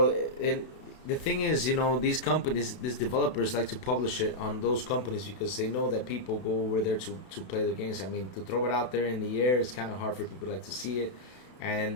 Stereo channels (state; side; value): late; right; 32 ms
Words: The thing is, you know, these companies, these developers like to publish it on those companies because they know that people go over there to play their games. I mean, to throw it out there in the air, it's kind of hard for people like to see it.